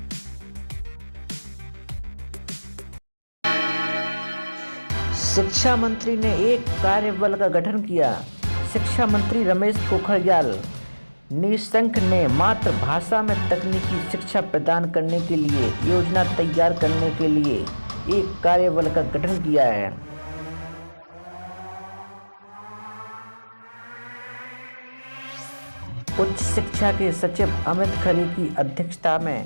शिक्षा मंत्री ने एक कार्यबल का गठन किया। शिक्षा मंत्री रमेश पोखरियाल निशंक ने मातृभाषा में तकनीकी शिक्षा प्रदान करने के लिए योजना तैयार करने के लिए एक कार्यबल का गठन किया है। उच्च शिक्षा के सचिव अमित खरे की अध्यक्षता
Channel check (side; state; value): both; inverted; correlation -1.00